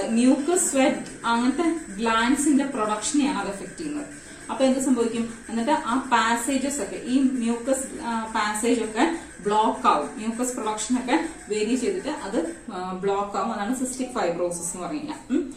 മ്യൂക്കസ്, സ്വെറ്റ് അങ്ങനത്തെ ഗ്ലാൻസിന്റെ പ്രൊഡക്ഷനെയാണ് അത് എഫക്ട് ചെയ്യുന്നത്. അപ്പൊ എന്ത് സംഭവിക്കും? എന്നിട്ട് ആ പാസേജസ് ഒക്കെ, ഈ മ്യൂക്കസ് പാസേജ് ഒക്കെ ബ്ലോക്ക് ആവും, മ്യൂക്കസ് പ്രൊഡക്ഷൻ ഒക്കെ വേരി ചെയ്തിട്ട് അത് ബ്ലോക്ക് ആവും. അതാണ് സിസ്റ്റിക് ഫൈബ്രോസിസ് എന്ന് പറഞ്ഞാൽ.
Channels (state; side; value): identical; both; correlation 1.00